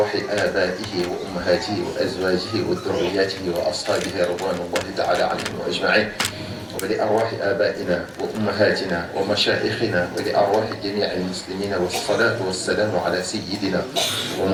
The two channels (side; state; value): both; identical; correlation 1.00